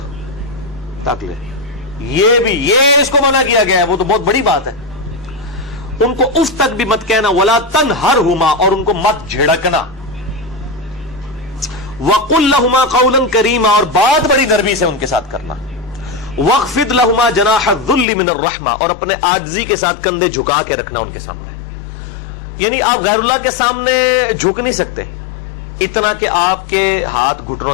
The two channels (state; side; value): drops out; right; at 18.1 s